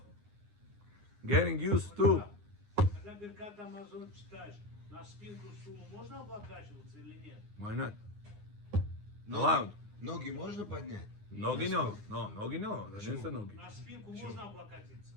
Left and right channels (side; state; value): left; late; 9.7 ms